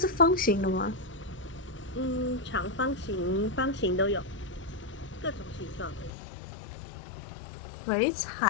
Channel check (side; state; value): right; drops out; at 6.1 s